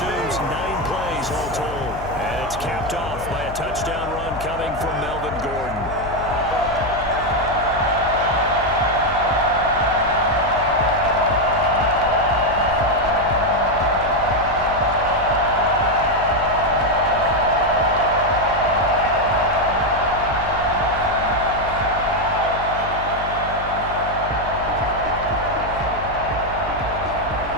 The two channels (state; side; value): noise; left; hum, 11 dB below the sound